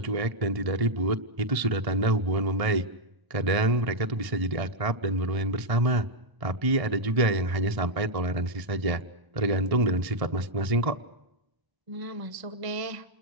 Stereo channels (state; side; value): late; left; 1.6 ms